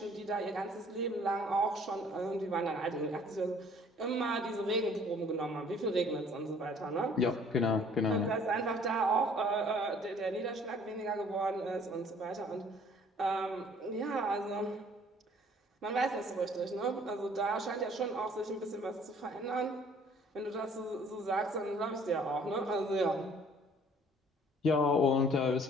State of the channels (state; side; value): normal; both; correlation 0.56